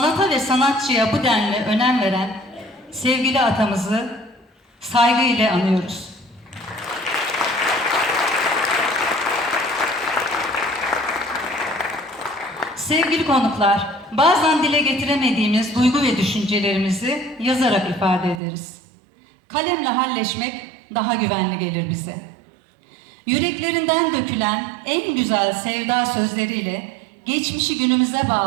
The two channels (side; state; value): left; drops out; at 18.4 s